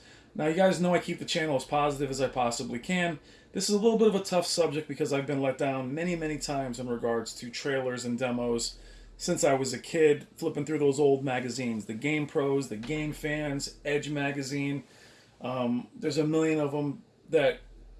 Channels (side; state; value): both; identical; correlation 1.00